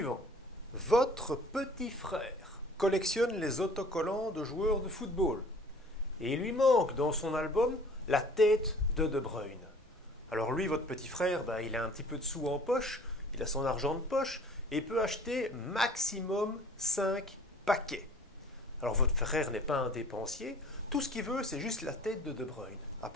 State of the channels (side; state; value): both; normal; correlation 0.50